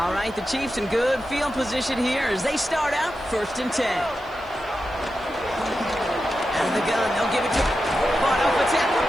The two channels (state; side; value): noise; left; hiss, 30 dB below the sound